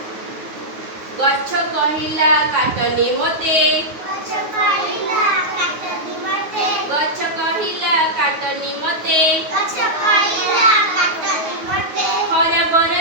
गच्छ कहिला काटनी मते गच्छ कहिला काटनी मते गच्छ कहिला काटनी मते गच्छ कहिला काटनी मते खरा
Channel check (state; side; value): late; left; 9.4 ms